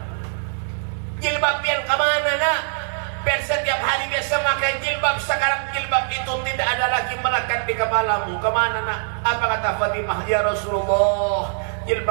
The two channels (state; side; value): silent; left; digital silence